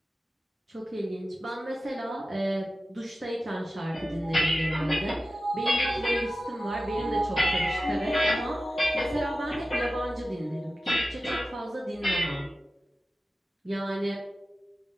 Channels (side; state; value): both; normal; correlation 0.94